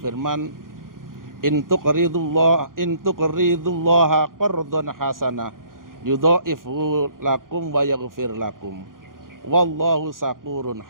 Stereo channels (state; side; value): late; left; 0.90 ms